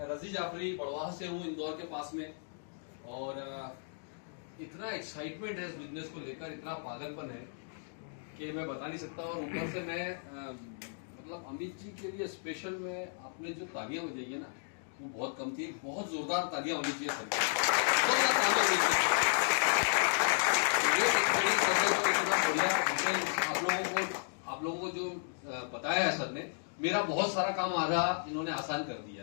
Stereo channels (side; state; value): right; silent; digital silence